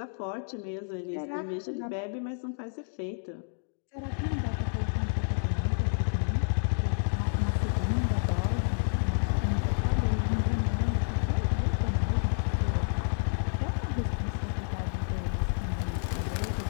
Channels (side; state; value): right; silent; digital silence